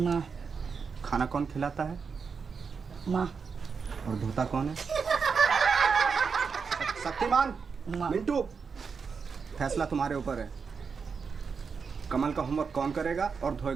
खाना कौन खिलाता है? माँ। और धोता कौन है? शक्तिमान, मिंटू, फैसला तुम्हारे ऊपर है। कमल का होमवर्क कौन करेगा और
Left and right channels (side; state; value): left; quieter; 5.6 dB